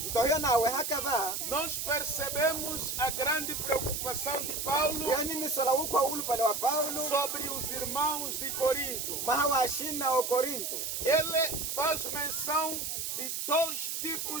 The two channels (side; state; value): right; noise; hiss, 3 dB below the sound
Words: Mtohio nawe hakava. nós percebemos a grande preocupação de Paulo Yani ni sola ukwa ulu pale wa Paulo. sobre os irmãos de Corinto. Mahawa ashina o Korinto. Ele faz menção de dois